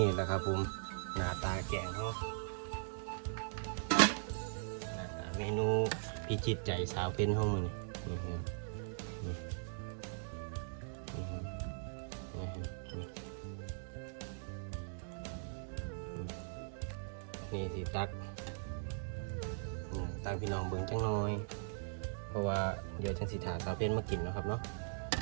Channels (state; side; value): silent; left; digital silence